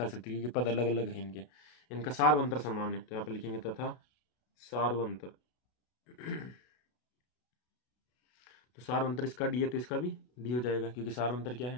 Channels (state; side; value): late; right; 32 ms